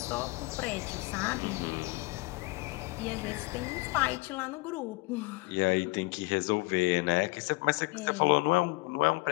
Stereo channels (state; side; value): quieter; right; 24.2 dB